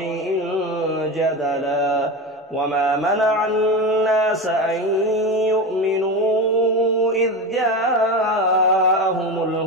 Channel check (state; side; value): normal; both; correlation 0.22